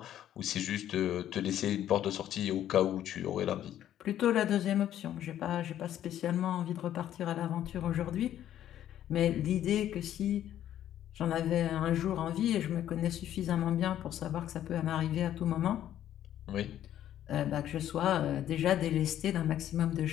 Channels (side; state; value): right; quieter; 11.5 dB